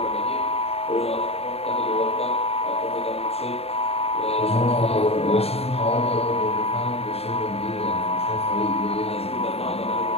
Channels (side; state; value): right; late; 0.29 ms